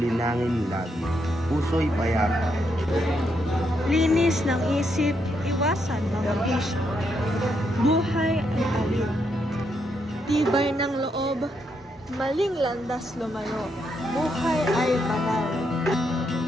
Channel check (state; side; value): normal; both; correlation 0.79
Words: lagi, puso'y payapa. Linis ng isip, iwasan mga bisyo. Buhay ay alin. Tibay ng loob, maling landas lumayo. Buhay ay banal.